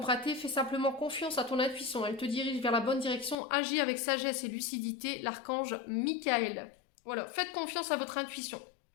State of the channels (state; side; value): drops out; right; at 3.4 s